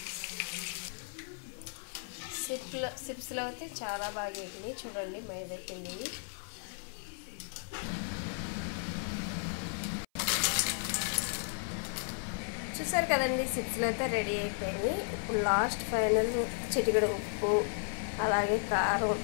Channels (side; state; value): right; silent; 55 dB below the other